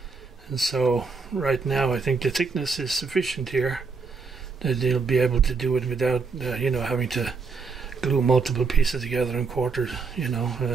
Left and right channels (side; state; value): left; quieter; 4.7 dB